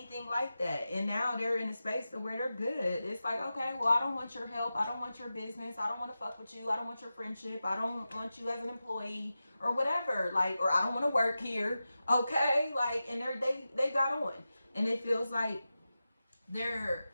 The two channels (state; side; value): inverted; both; correlation -0.93